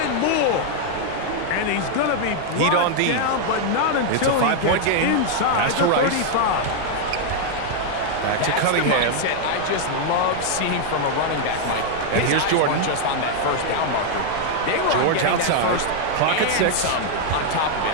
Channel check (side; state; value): both; different; correlation 0.00